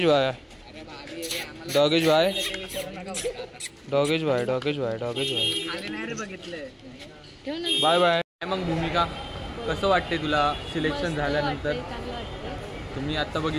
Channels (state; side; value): identical; both; correlation 1.00